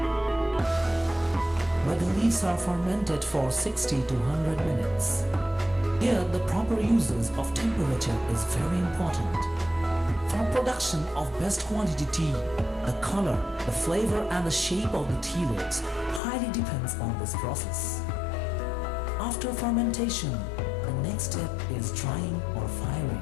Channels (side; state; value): right; drops out; at 16.2 s